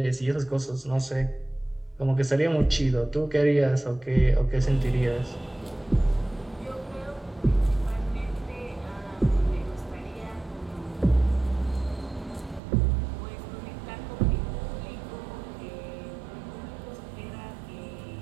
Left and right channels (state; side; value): drops out; left; at 12.6 s